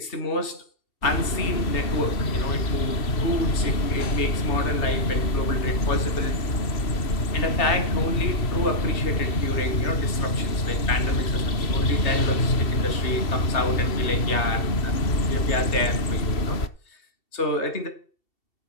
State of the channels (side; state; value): right; late; 2.7 ms